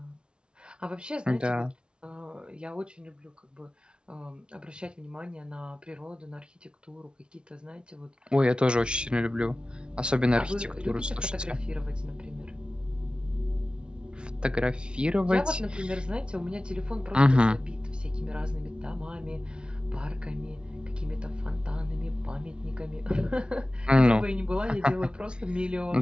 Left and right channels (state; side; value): late; left; 0.056 ms